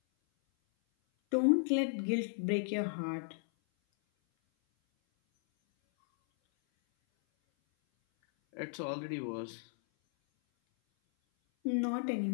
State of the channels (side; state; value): right; silent; 55 dB below the other